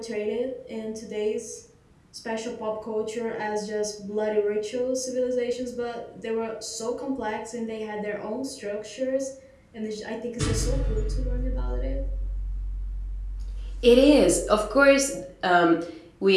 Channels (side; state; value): both; identical; correlation 1.00